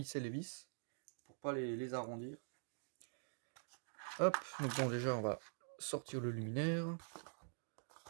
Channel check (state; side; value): silent; left; digital silence